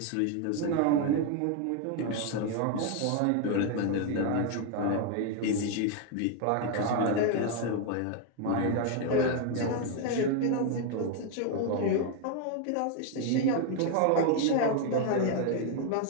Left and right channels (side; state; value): both; different; correlation 0.01